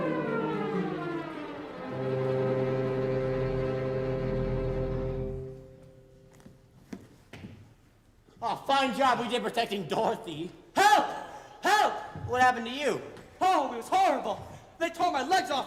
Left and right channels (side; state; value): both; identical; correlation 1.00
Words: Oh, fine job we did protecting Dorothy. Help! Help! What happened to you? Oh, it was horrible. They tore my legs